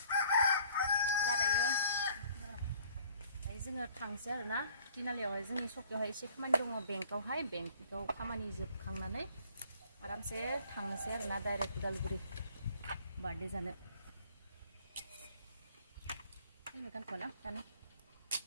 जोङो थांसै आरोना तिनालियावहाय जोंनि सकियावहाय एसे खामानि दङ बेंकआवहाय बेंकआव खामानि जोबखांनानै आरामसे थांनोसै आरोना डाइरेक्ट उदालगुरि बार्थडे जानो गानथ'ना दानो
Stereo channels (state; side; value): inverted; both; correlation -0.54